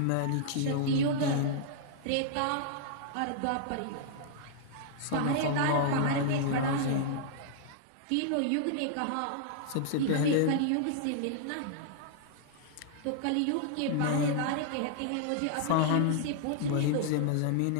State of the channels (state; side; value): different; both; correlation -0.01